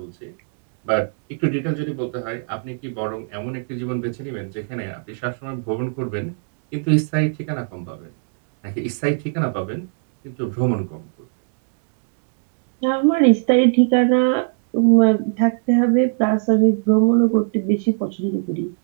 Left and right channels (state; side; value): silent; left; digital silence